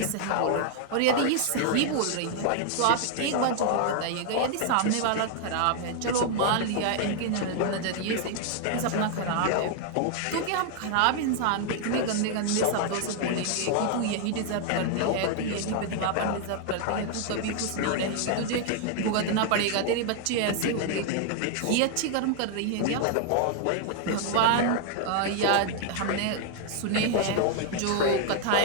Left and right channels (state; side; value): different; both; correlation 0.00